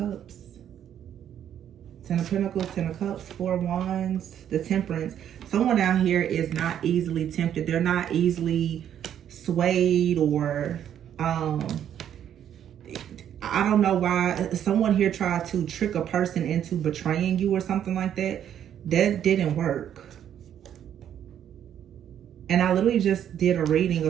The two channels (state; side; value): quieter; left; 9.9 dB